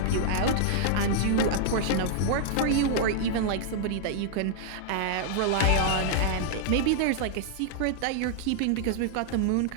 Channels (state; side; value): different; both; correlation -0.01